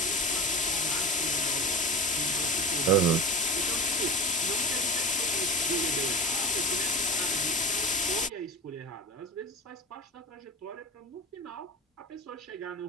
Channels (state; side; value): normal; both; correlation 0.31